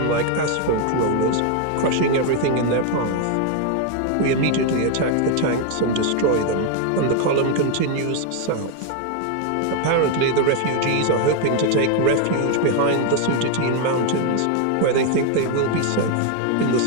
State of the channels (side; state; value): both; different; correlation 0.01